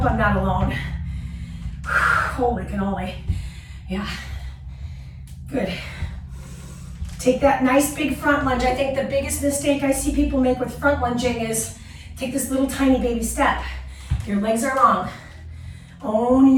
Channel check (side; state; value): both; identical; correlation 1.00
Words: I'm not alone. Holy cannoli. Yeah, good. Take that nice big front lunge. I think the biggest mistake I see people make with front lunging is take this little tiny baby step. Your legs are long. Own